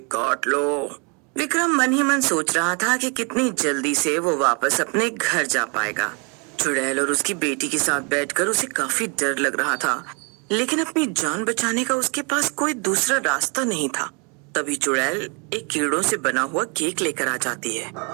काट लो। विक्रम मन ही मन सोच रहा था कि कितनी जल्दी से वो वापस अपने घर जा पाएगा। चुड़ैल और उसकी बेटी के साथ बैठकर उसे काफी डर लग रहा था, लेकिन अपनी जान बचाने का उसके पास कोई दूसरा रास्ता नहीं था। तभी चुड़ैल एक कीड़ों से बना हुआ केक लेकर आ जाती है।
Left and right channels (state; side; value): quieter; left; 33.9 dB